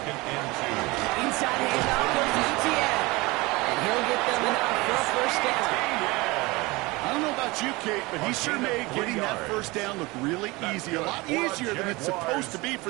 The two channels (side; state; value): left; quieter; 23.0 dB